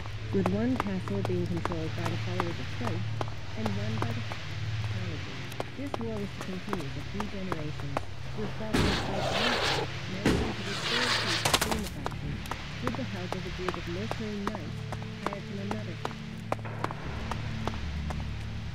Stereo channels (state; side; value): identical; both; correlation 1.00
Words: with one castle being controlled by the followers of faith and one by the technology. This war was to continue for 3 generations, with Falkmer's faith managing to restore peace between the factions with the help of a group of mercenary knights hired from another faction.